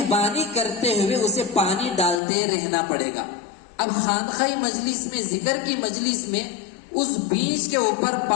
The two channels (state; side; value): drops out; right; at 2.2 s